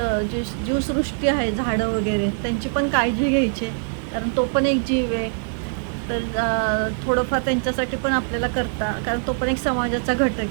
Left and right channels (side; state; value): left; silent; 64 dB below the other